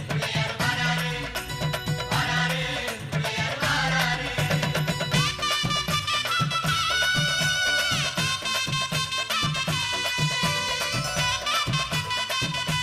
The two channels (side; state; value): both; identical; correlation 1.00